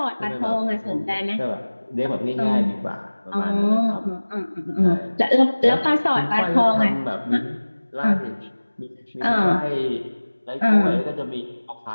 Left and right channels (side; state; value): both; inverted; correlation -1.00